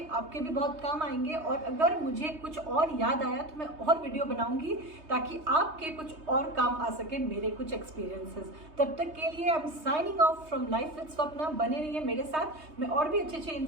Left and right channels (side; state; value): left; late; 3.2 ms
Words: आपके भी बहुत काम आएंगे। और अगर मुझे कुछ और याद आया तो मैं और वीडियो बनाऊंगी ताकि आपके कुछ और काम आ सके मेरे कुछ एक्सपीरियंसेस। तब तक के लिए I am signing off from life with Swapna. बने रहिए मेरे साथ, मैं और भी अच्छे अच्छे